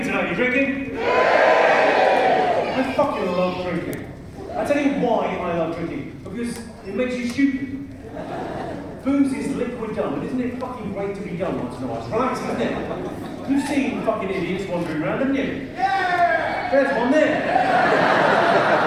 tonight? You drinking? I fucking love drinking. I tell you why I love drinking. Because it makes you stupid. Booze is liquid dumb, and isn't it fucking great to be dumb once in a while? It's relaxing, isn't it? You've seen fucking idiots wandering around, haven't you? Yeah! There's one there.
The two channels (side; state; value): both; identical; correlation 1.00